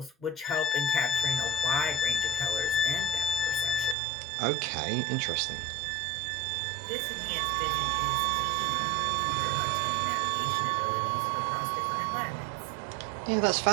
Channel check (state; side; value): drops out; left; at 4.0 s